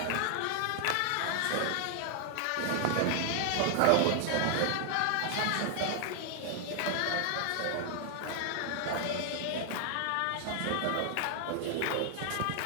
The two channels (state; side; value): different; both; correlation 0.00